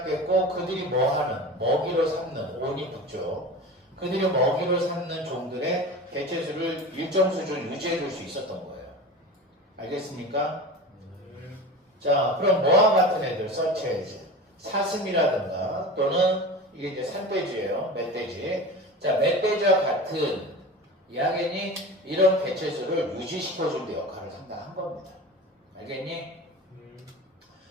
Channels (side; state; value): both; normal; correlation 0.32